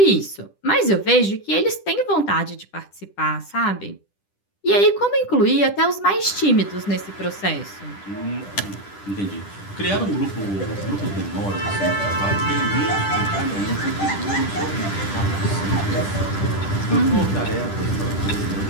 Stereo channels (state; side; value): late; right; 10 ms